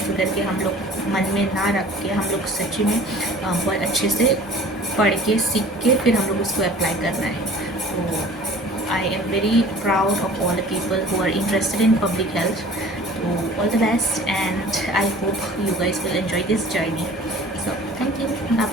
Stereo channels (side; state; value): both; normal; correlation 0.46